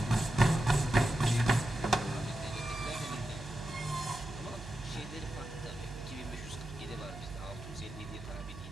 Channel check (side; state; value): right; noise; hum, 12 dB below the sound